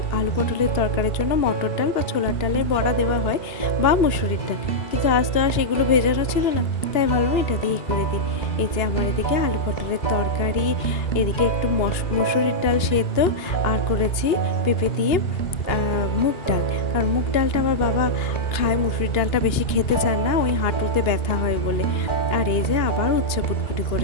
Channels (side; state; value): right; late; 2.8 ms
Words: আলু পটলের তরকারির জন্য মটর ডাল বা ছোলার ডালের বড়া দেওয়া হয়, বা মুসুরির ডাল, কিন্তু আজ তো আর সেগুলো ভেজানো ছিল না, তাই ভাবলাম এটা দিয়েই করে দিই। এই যে আমার এদিকে আলু পটলের তরকারি, এদিকে একটু মসুরির ডাল সেদ্ধ, আর করেছি পেঁপে দিয়ে মুগ ডাল, কারণ মুগ ডালটা আমার বাবা খায়, মুসুরির ডালটা বেশি খেতে চান না, ওই হাঁটুতে ব্যথা হয় বলে। আর এই যে আবার উচ্ছে পুটপুটি